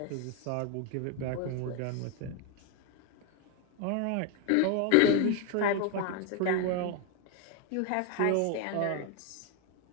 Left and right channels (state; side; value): different; both; correlation 0.01